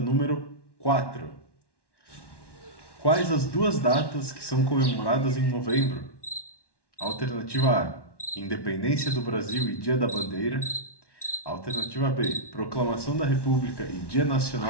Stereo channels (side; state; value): right; late; 1.1 ms